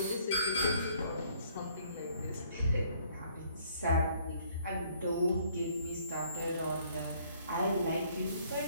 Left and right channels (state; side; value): inverted; both; correlation -0.62